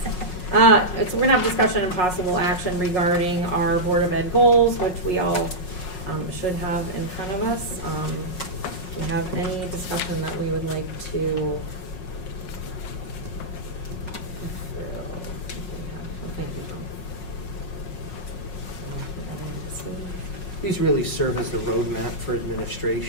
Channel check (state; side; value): late; right; 5.5 ms